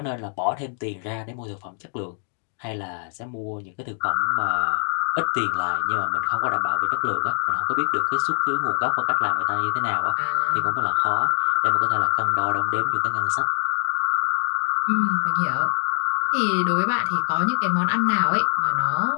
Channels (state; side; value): silent; right; 61 dB below the other